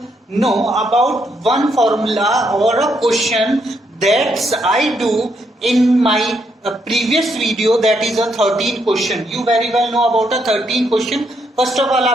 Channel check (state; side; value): normal; both; correlation 0.76